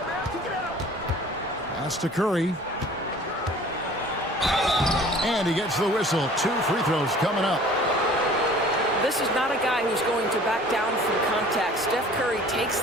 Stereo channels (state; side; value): normal; both; correlation 0.48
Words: Pass to Curry. And he gets the whistle. 2 free throws coming up. This is not a guy who's going to back down from contact. Steph Curry takes